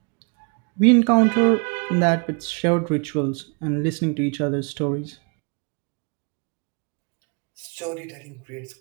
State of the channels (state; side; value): quieter; left; 34.8 dB